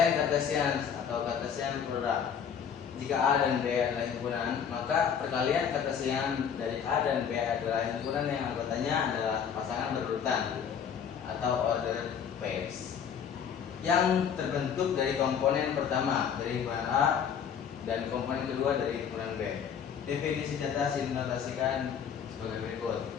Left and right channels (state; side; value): quieter; right; 7.7 dB